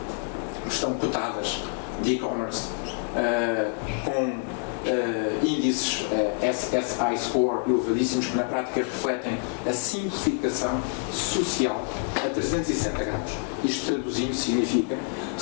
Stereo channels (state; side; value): quieter; right; 39.8 dB